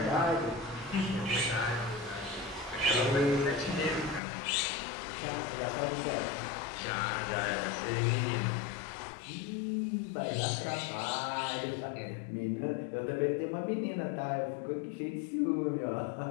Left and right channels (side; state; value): right; drops out; at 4.2 s